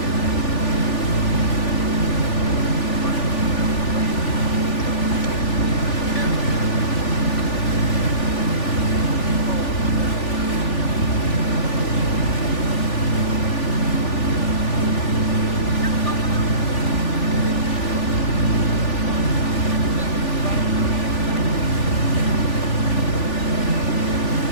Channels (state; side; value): late; right; 3.4 ms